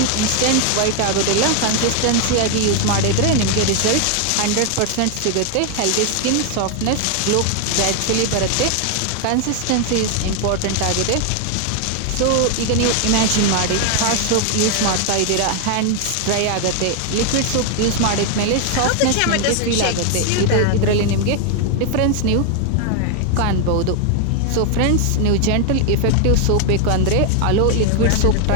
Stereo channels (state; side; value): different; both; correlation 0.01